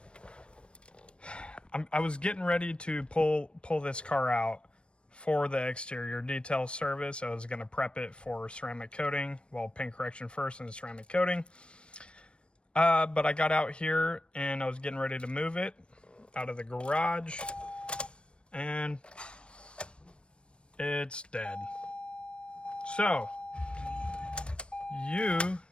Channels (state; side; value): late; right; 0.058 ms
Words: I was getting ready to pull this car out for the exterior detail service. I was going to prep it for ceramic coating, well, paint correction first and ceramic coating. But I got out here and I was getting ready to move it out of the garage and it's dead. So you